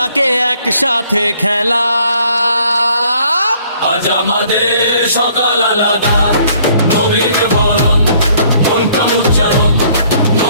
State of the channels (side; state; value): both; inverted; correlation -0.61